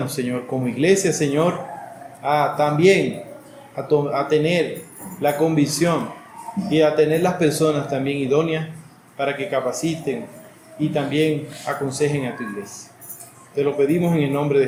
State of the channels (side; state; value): both; identical; correlation 1.00